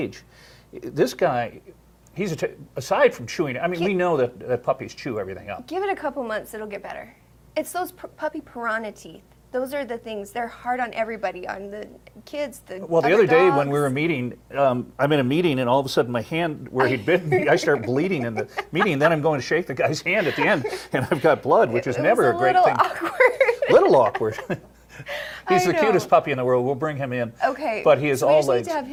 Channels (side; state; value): both; identical; correlation 1.00